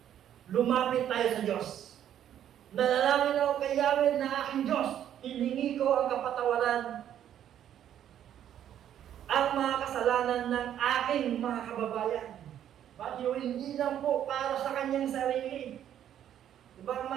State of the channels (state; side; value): quieter; left; 10.4 dB